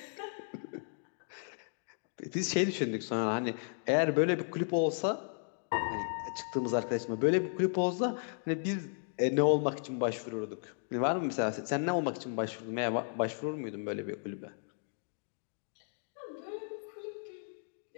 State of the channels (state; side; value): silent; right; digital silence